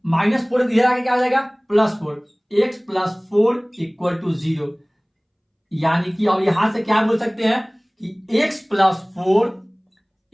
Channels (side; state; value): both; identical; correlation 1.00